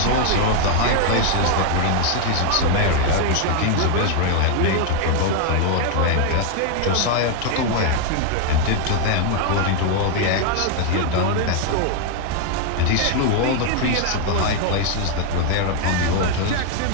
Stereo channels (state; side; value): different; both; correlation 0.00